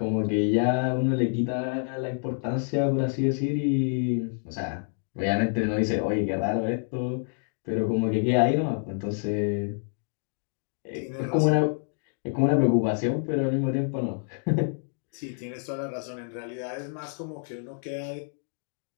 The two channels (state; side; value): silent; right; 60 dB below the other